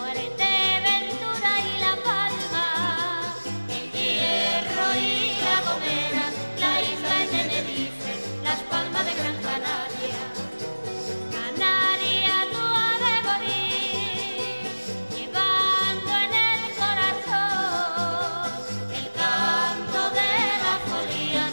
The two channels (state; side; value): inverted; both; correlation -1.00